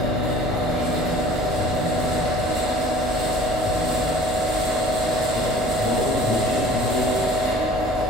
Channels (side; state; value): both; normal; correlation 0.47